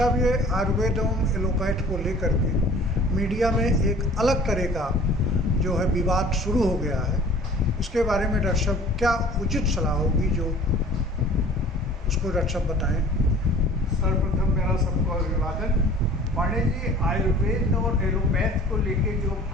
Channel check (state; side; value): normal; both; correlation 0.48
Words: ये आयुर्वेद एवं एलोपैथ को लेकर के मीडिया में एक अलग तरह का जो है विवाद शुरू हो गया है, इसके बारे में डॉक्टर साहब क्या उचित सलाह होगी जो उसको डॉक्टर साहब बताएं। सर्वप्रथम मेरा सबको अभिवादन। पांडे जी, आयुर्वेद और एलोपैथ को लेके जो